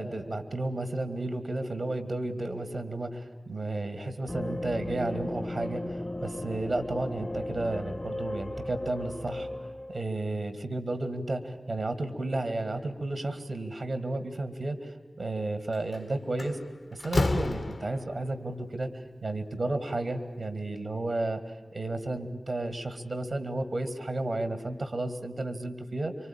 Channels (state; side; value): normal; both; correlation 0.94